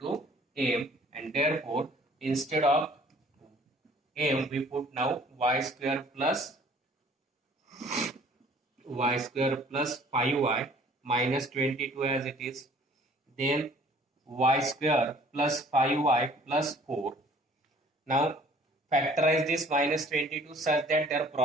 m, and therefore instead of m we put now y square plus 5y minus 22 as it is, then y square plus 5y plus 4. Now factorize this minus 22 such that their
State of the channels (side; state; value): both; normal; correlation 0.54